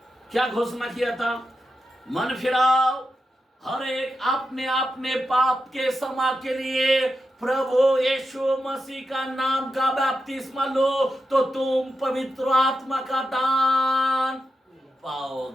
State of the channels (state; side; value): normal; both; correlation 0.88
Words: क्या घोषणा किया था? मन फिराओ, हर एक अपने अपने पाप के क्षमा के लिए प्रभु यीशु मसीह का नाम का बपतिस्मा लो, तो तुम पवित्र आत्मा का दान